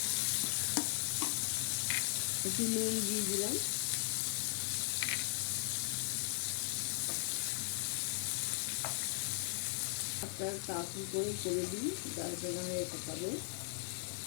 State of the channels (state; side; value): silent; right; digital silence